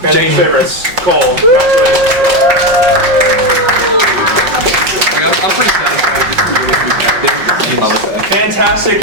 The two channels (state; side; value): late; left; 5.7 ms